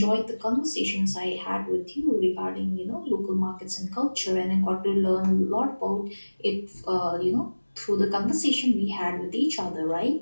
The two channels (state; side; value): inverted; both; correlation -1.00